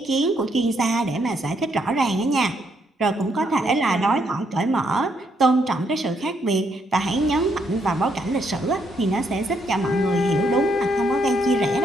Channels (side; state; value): both; normal; correlation 0.74